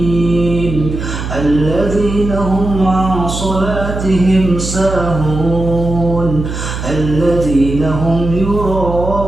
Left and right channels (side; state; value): right; noise; hum, 6 dB below the sound